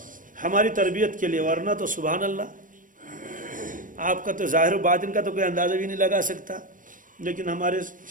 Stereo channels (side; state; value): left; late; 0.38 ms